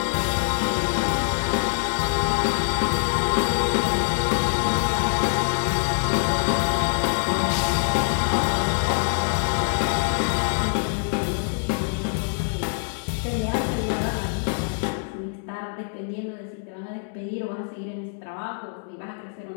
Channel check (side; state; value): right; silent; digital silence